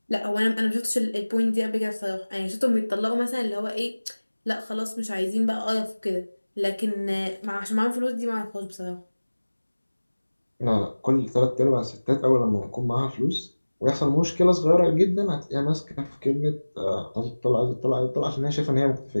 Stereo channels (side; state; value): both; inverted; correlation -1.00